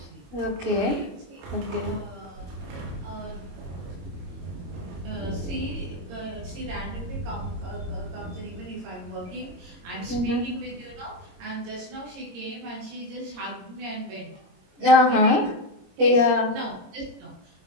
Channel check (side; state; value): left; late; 22 ms